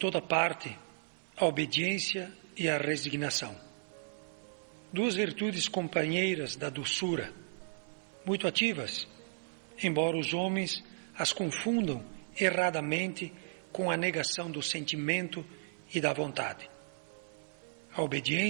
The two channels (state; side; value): silent; left; 55 dB below the other